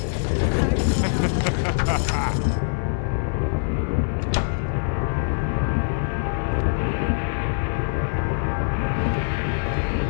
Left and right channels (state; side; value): silent; right; digital silence